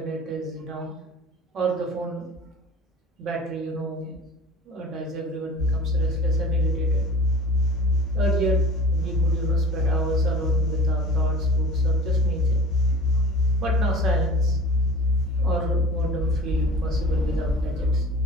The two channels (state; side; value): normal; both; correlation 0.41